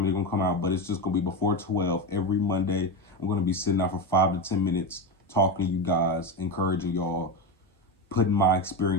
they're going to come out, but it's just going to be before 12 every Monday. I'm going to be sitting out for 5 to 10 minutes, talking to you guys, encouraging y'all, putting my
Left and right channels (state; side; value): normal; both; correlation 0.17